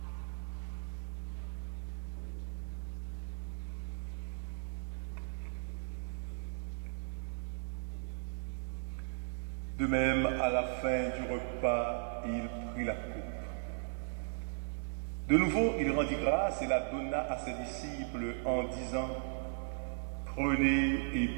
De même, à la fin du repas, il prit la coupe. De nouveau, il rendit grâce et la donna à ses disciples en disant: prenez et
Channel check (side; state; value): left; silent; 53 dB below the other